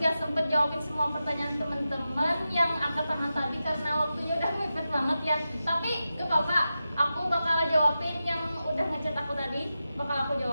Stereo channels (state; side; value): inverted; both; correlation -0.91